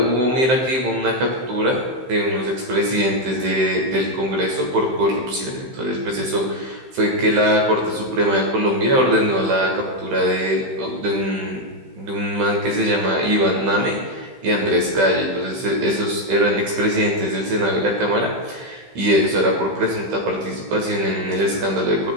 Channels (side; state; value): left; late; 15 ms